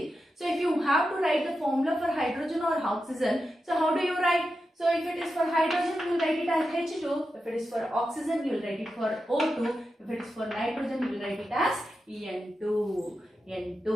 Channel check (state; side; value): normal; both; correlation 0.89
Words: So if you have to write the formula for hydrogen or oxygen, so how do you write? So if it is for hydrogen, you will write it as H2. If it is for oxygen, you will write it for O2. If it is for nitrogen, you will write it as N2.